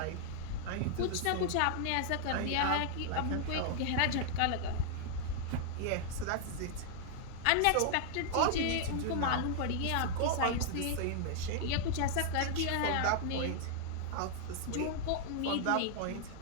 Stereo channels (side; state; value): both; different; correlation -0.01